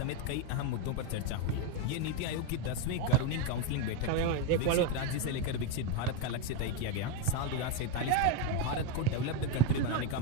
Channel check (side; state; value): both; different; correlation 0.03